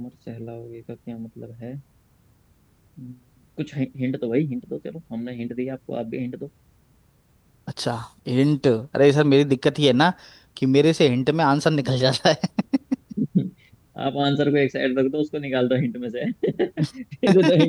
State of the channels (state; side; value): identical; both; correlation 1.00